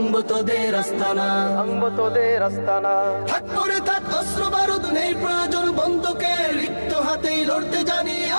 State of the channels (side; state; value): both; inverted; correlation -1.00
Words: তোদের আস্তানা, ভাঙবো তোদের আস্তানা। থাক পড়ে থাক অস্ত্র বারুদ, নেই প্রয়োজন বন্দুকের। রিক্ত হাতেই লড়তে জানি